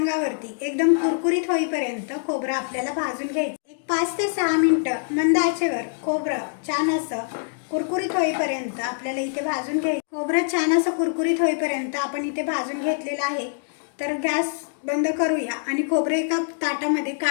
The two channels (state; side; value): silent; right; digital silence